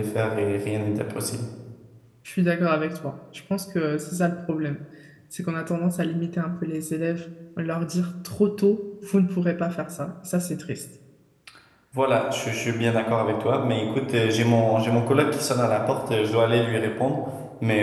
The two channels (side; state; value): both; identical; correlation 1.00